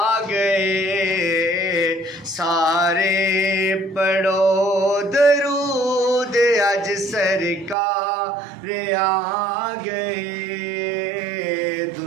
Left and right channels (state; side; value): drops out; left; at 7.8 s